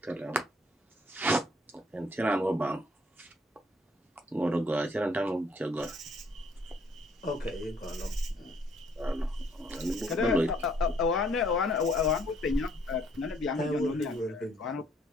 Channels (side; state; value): both; normal; correlation 0.64